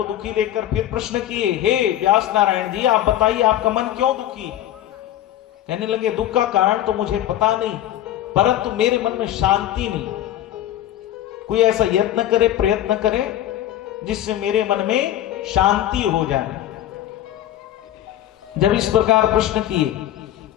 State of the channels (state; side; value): quieter; right; 12.6 dB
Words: दुखी देखकर फिर प्रश्न किए, हे व्यास नारायण जी आप बताइए आपका मन क्यों दुखी है? कहने लगे दुख का कारण तो मुझे पता नहीं, परंतु मेरे मन में शांति नहीं। कोई ऐसा यत्न करे, प्रयत्न करे जिससे मेरे मन में शांति हो जाए। जब इस प्रकार प्रश्न किए